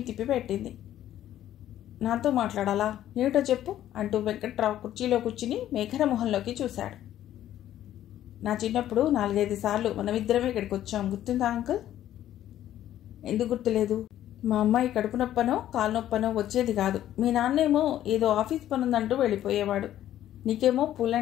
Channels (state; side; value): quieter; right; 12.2 dB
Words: తిప్పిపెట్టింది. నాతో మాట్లాడాలా? ఏమిటో చెప్పు అంటూ వెంకట్రావు కుర్చీలో కూర్చుని మేఘన మొహంలోకి చూశాడు. నా చిన్నప్పుడు 4-5 సార్లు మనమిద్దరమే ఇక్కడికి వచ్చాం, గుర్తుందా అంకుల్? ఎందుకు గుర్తులేదు? మా అమ్మాయి కడుపు నొప్పనో కాలు నొప్పనో వచ్చేది కాదు. మీ నాన్నేమో ఏదో ఆఫీస్ పనుందంటూ వెళ్ళిపోయేవాడు. నీకేమో